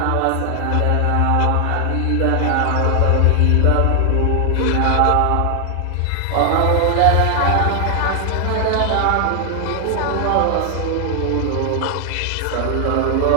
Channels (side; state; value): both; different; correlation 0.00